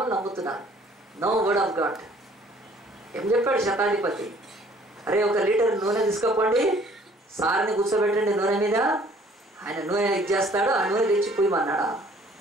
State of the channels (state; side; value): normal; both; correlation 0.57